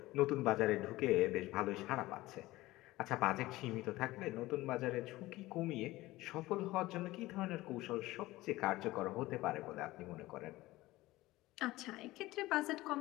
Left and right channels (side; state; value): right; quieter; 18.3 dB